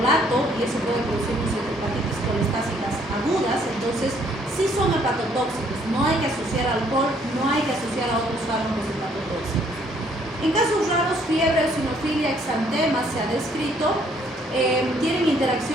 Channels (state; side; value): normal; both; correlation 0.65